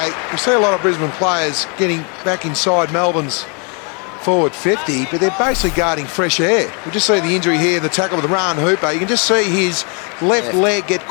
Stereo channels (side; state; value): right; quieter; 35.7 dB